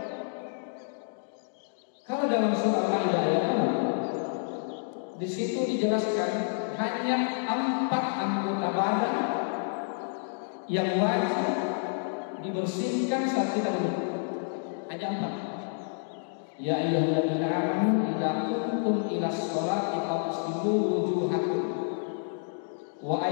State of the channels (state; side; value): silent; right; digital silence